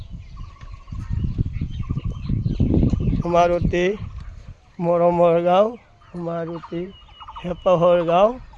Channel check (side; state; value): both; identical; correlation 1.00